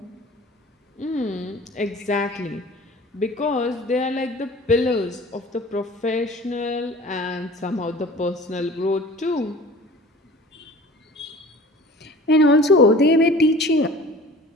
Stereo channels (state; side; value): normal; both; correlation 0.44